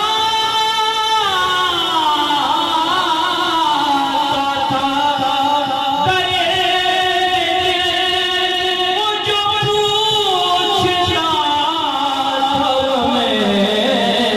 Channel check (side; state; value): both; identical; correlation 1.00